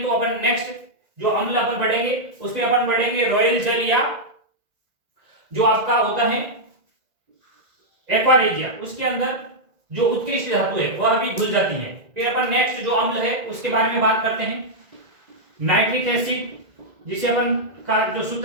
तो अपन नेक्स्ट जो अम्ल अपन पढ़ेंगे उस पे अपन पढ़ेंगे रॉयल जल, या जो आपका होता है एक्वा रेजिया, उसके अंदर जो उत्कृष्ट धातु है वह भी घुल जाती है। फिर अपन नेक्स्ट जो अम्ल है उसके बारे में बात करते हैं, नाइट्रिक एसिड, जिसे अपन का जो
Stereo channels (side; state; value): left; late; 1.9 ms